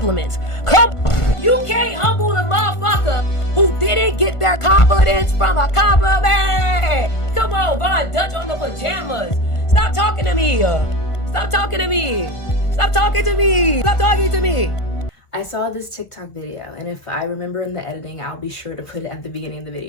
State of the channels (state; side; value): late; right; 1.5 ms